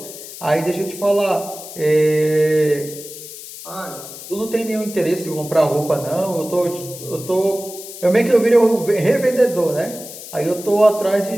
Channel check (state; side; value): noise; left; hiss, 13 dB below the sound